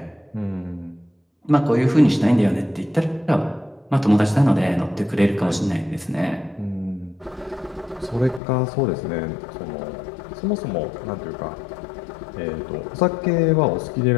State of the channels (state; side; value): drops out; right; at 8.4 s